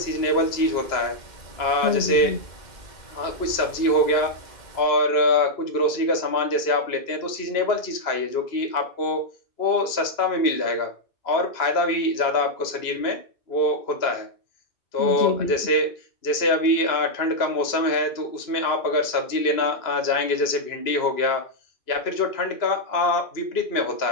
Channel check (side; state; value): right; late; 2.9 ms